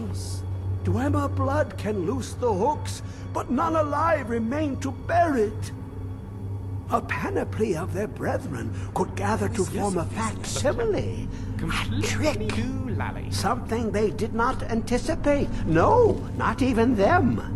Dwemer blood can loose the hooks, but none alive remain to bear it. A panoply of their brethren could gather to form a facsimile. A trick. Something they did not anticipate. No, not even them.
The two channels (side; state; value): both; identical; correlation 1.00